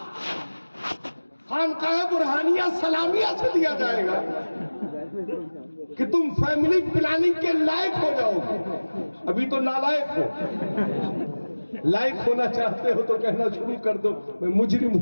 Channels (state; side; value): inverted; both; correlation -1.00